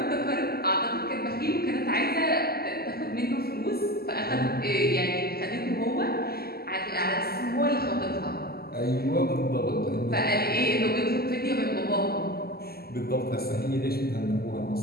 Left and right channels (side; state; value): right; late; 0.45 ms